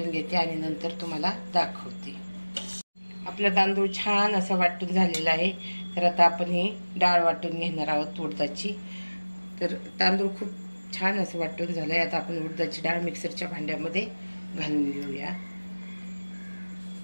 घेते आणि नंतर तुम्हाला दाखवते। आपला तांदूळ छान असं वाटून झालेला आहे। तर आता आपण ही डाळ वाटून घेणार आहोत उडदाची। तर तांदूळ खूप छान असं वाटून झालंय। आता आपण उडदाची डाळ मिक्सरच्या भांड्यामध्ये घालून घेऊया।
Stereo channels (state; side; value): inverted; both; correlation -1.00